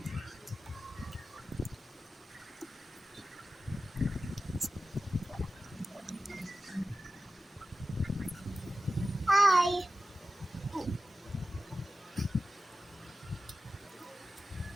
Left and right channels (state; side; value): normal; both; correlation 0.94